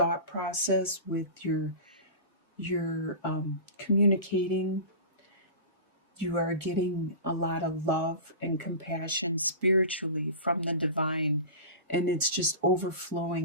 process, with your communicating. You are getting a lot of love and compassion spiritually from the divine, and it's just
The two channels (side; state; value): both; inverted; correlation -0.32